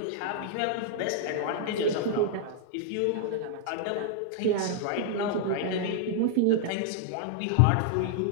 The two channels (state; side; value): different; both; correlation -0.01